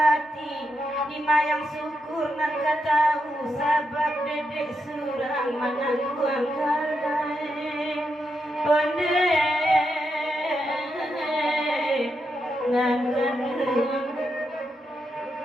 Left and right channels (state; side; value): normal; both; correlation 0.84